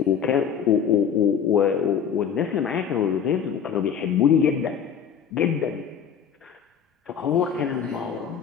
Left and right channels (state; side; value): quieter; right; 7.7 dB